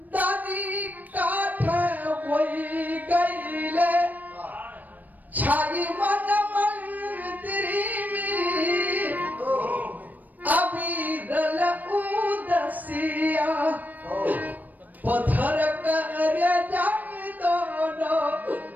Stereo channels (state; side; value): late; left; 0.083 ms